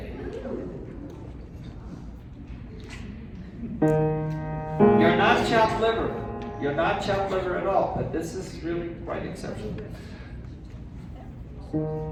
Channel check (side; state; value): both; identical; correlation 1.00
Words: You're not chopped liver. You're not chopped liver at all, but this is really quite exceptional.